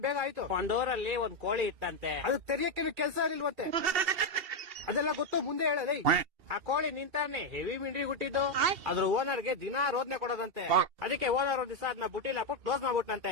ಬೇಗ, ಆಯ್ತು. ಒಂದ್ ಊರಲ್ಲಿ ಒಂದ್ ಕೋಳಿ ಇತ್ತಂತೆ. ಅದು ತೆರಿಯಕ್ಕೆ ಕೆಲಸ ಇಲ್ವಂತೆ. ಅದೆಲ್ಲ ಗೊತ್ತು, ಮುಂದೆ ಹೇಳಲಿ. ಆ ಕೋಳಿ ನಿಂತಾನೆ ಹೆವಿ ಮಿಂಡ್ರಿ ಹುಟ್ಟಿದ್ದು. ಅದ್ರ ಓನರ್ಗೆ ದಿನಾ ರೋದನೆ ಕೊಡೋದಂತೆ. ಅದಕ್ಕೆ ಓನರ್ ಒಂದ್ ದಿವಸ ಅದನ್ನ ಬುಟ್ಟಿಲ್ ಹಾಕ್ಬಿಟ್ಟು ಕ್ಲೋಸ್ ಮಾಡ್ಬಿಟ್ನಂತೆ.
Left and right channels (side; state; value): left; late; 2.7 ms